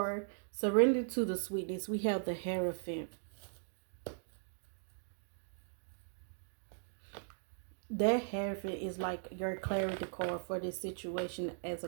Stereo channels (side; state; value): left; silent; digital silence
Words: surrender to the sweetness, we have the Hierophant. That Hierophant is like your clarity card for this situation as